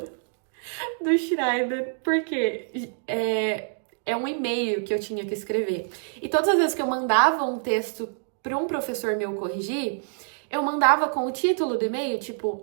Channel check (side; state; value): left; silent; digital silence